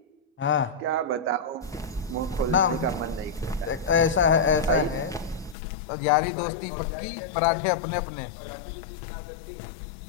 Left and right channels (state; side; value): drops out; right; at 5.6 s